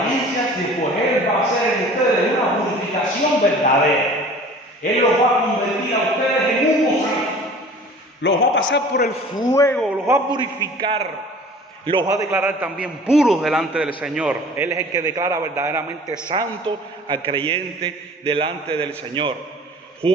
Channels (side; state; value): both; normal; correlation 0.45